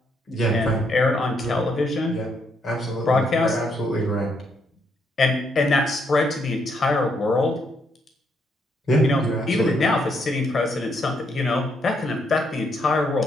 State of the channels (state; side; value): normal; both; correlation 0.74